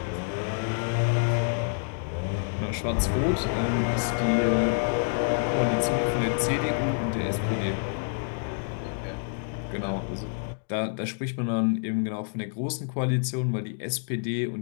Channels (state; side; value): silent; right; digital silence